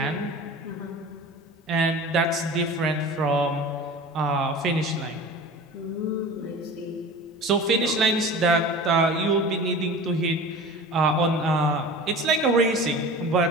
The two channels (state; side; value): normal; both; correlation 0.37